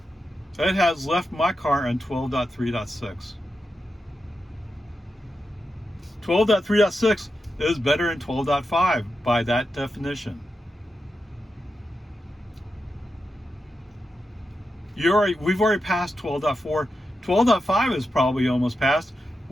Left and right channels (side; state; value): both; normal; correlation 0.89